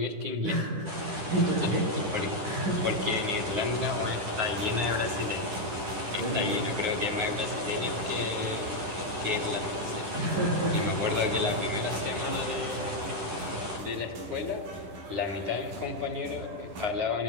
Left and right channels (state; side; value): late; left; 10 ms